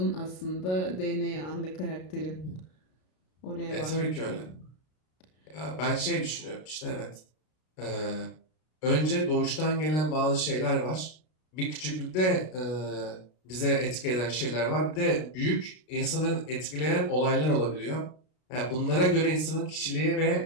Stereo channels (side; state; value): right; late; 33 ms